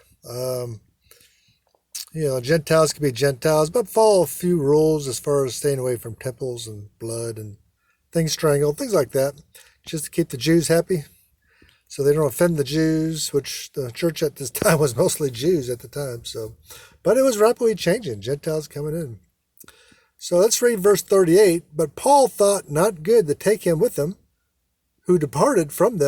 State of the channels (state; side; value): identical; both; correlation 1.00